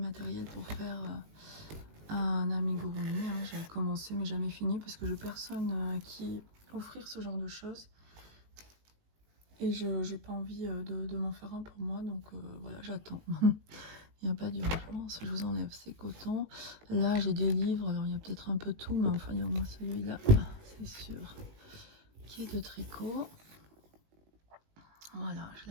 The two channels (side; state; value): left; late; 19 ms